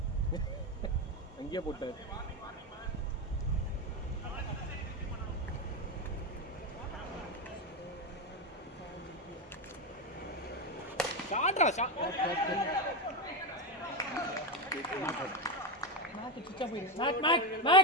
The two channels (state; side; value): normal; both; correlation 0.12